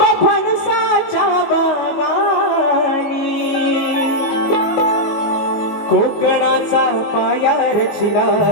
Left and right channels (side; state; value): right; late; 19 ms